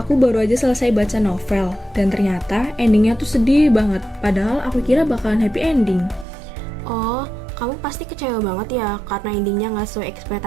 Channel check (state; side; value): drops out; left; at 6.2 s